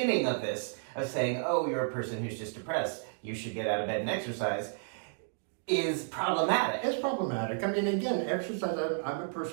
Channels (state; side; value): silent; left; digital silence